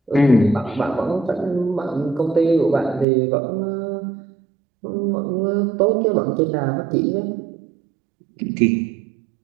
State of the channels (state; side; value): drops out; left; at 3.1 s